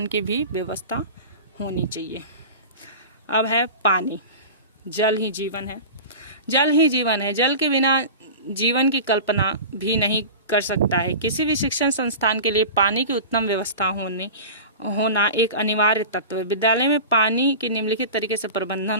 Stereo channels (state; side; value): inverted; both; correlation -0.32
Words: की भी व्यवस्था होनी चाहिए। अब है पानी। जल ही जीवन है। जल ही जीवन है। जल के बिना जीवन की कल्पना भी नहीं कर सकता है। किसी भी शिक्षण संस्थान के लिए पानी की उत्तम व्यवस्था होना एक अनिवार्य तत्व है। विद्यालय में पानी की निम्नलिखित तरीके से प्रबंधन